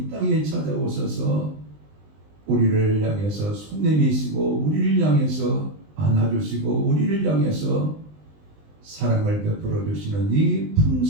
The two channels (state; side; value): late; left; 20 ms